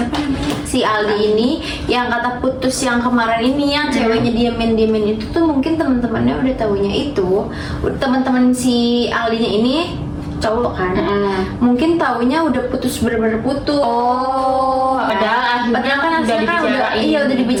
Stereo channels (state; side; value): identical; both; correlation 1.00